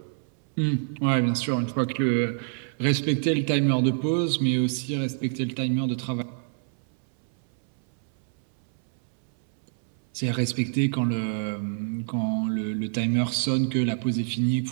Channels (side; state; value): left; silent; 60 dB below the other